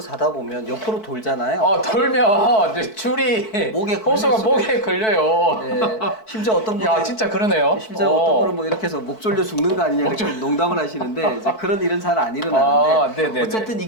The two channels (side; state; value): right; late; 4.6 ms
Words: 자다 보면 옆으로 돌잖아요. 돌면 이제 줄이 목에 걸릴 호수가 수가 목에 걸려요. 예, 심지어 어떤 분이 야, 진짜 그러네요. 심지어 어떤 분은 뭐 이렇게 해서 목 졸려 죽는 거 아니냐 이렇게 농담을 하시는데 이제 그런 일은 잘 안 일어나는데 네네네. 어쨌든